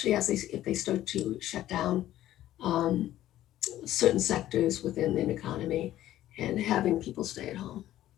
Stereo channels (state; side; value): quieter; right; 13.5 dB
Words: if they start to shut down certain sectors within the economy and having people stay at home.